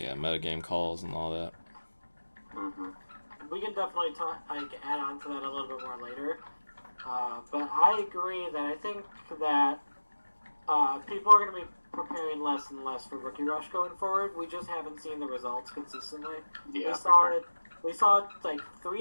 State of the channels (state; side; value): inverted; both; correlation -1.00